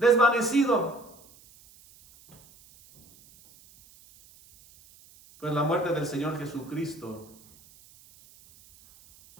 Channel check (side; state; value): right; noise; hiss, 26 dB below the sound